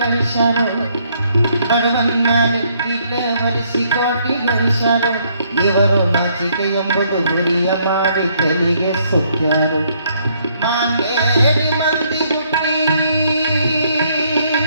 ಬಡವನ್ ಮ್ಯಾಲೆ ಕಿಟ್ಲೆ ಹೊರಿಸಿ ಕೋಟಿ ಗಳಿಸ್ಯಾರು, ಇವರು ನಾಚಿಕೆ ಎಂಬುದು ಹುರಿಯ ಮಾಡಿ ತೆಲಿಗೆ ಸುತ್ಯಾರು. ಮಾಂಗೇರಿ ಮಂದಿ ಹುಟ್ಟಿ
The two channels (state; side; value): inverted; both; correlation -0.68